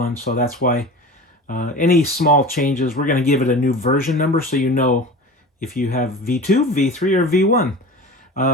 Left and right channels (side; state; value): both; normal; correlation 0.34